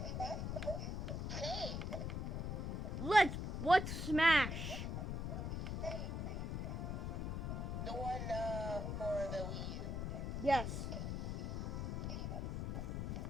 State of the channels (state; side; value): noise; left; rumble, 2 dB below the sound